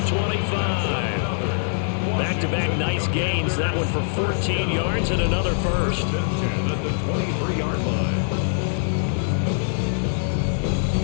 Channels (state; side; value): silent; right; 62 dB below the other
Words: 25. Back-to-back nice gains. That one for 14 yards and another first. 10 at the 23-yard line.